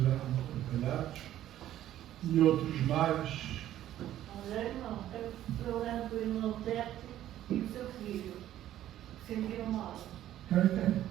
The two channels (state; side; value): quieter; left; 12.6 dB